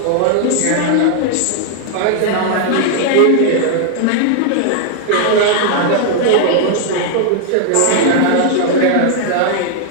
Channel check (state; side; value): different; both; correlation 0.00